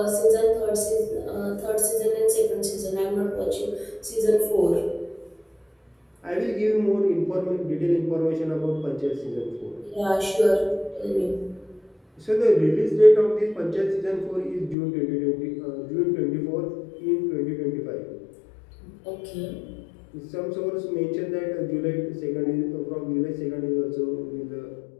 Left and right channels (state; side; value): drops out; right; at 14.8 s